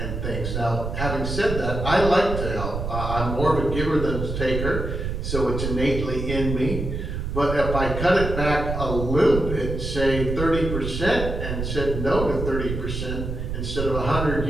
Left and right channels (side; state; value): right; noise; rumble, 4 dB below the sound